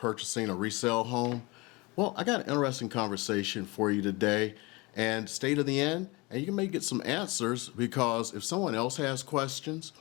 a resale home? Well, I got an interesting conversation for you today, and stay to the end and you may get some answers, because if someone else has questions,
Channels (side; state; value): right; quieter; 25.0 dB